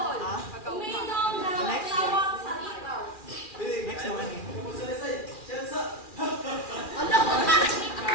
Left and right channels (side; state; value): right; late; 2.4 ms